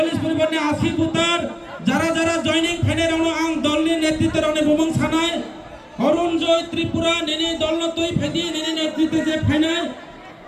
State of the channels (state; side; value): identical; both; correlation 1.00